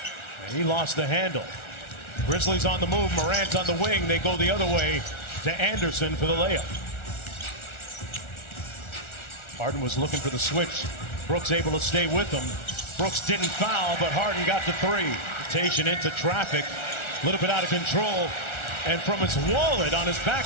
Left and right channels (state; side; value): late; right; 1.4 ms